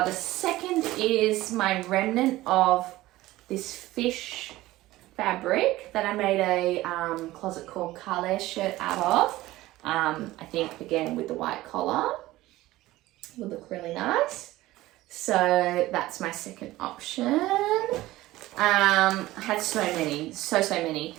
second is my remnant of this fish fabric that I made a closet called Calais shirt out of. I think again with the white collar would look really nice. So that's my second option. I had so many.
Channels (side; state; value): left; quieter; 17.1 dB